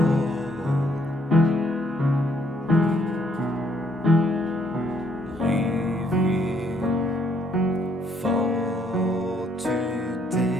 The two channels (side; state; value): both; normal; correlation 0.69